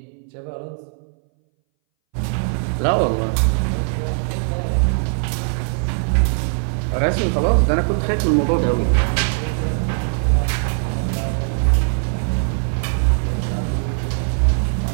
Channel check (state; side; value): silent; left; 62 dB below the other